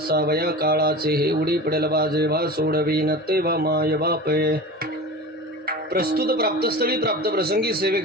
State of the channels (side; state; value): both; normal; correlation 0.33